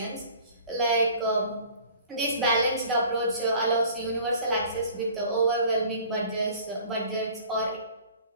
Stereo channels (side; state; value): both; inverted; correlation -0.48